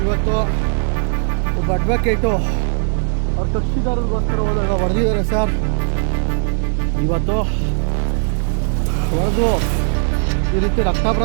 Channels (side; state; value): left; silent; digital silence